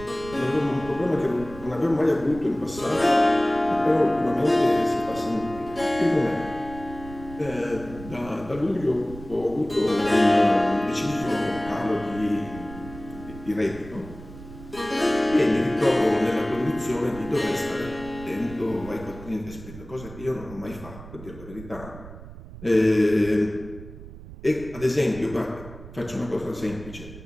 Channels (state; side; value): noise; right; rumble, 15 dB below the sound